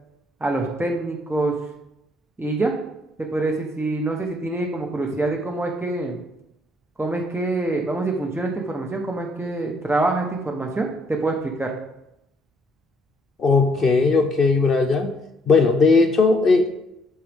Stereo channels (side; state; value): both; normal; correlation 0.68